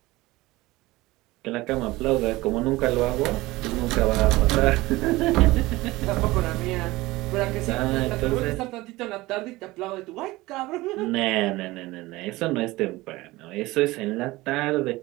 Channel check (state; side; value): quieter; left; 19.8 dB